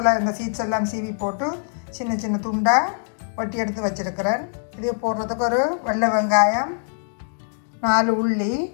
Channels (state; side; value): silent; right; 60 dB below the other